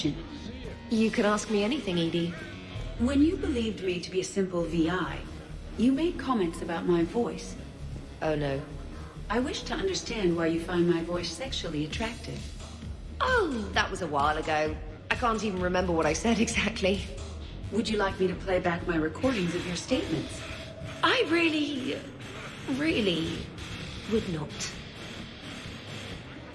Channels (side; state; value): both; identical; correlation 1.00